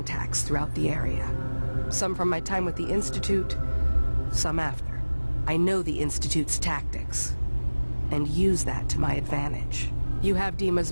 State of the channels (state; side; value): inverted; both; correlation -1.00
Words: throughout the area. Some from my time with the Institute, some after. I know the Institute's tactics, and use that to my advantage. You have Dima's